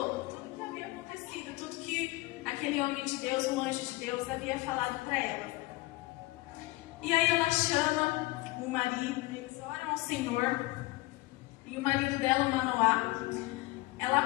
tudo que havia acontecido, tudo que aquele homem de Deus, um anjo de Deus, havia falado para ela. E aí ela chama o marido, eles oram ao Senhor, e o marido dela, o Manoá,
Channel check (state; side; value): quieter; right; 20.7 dB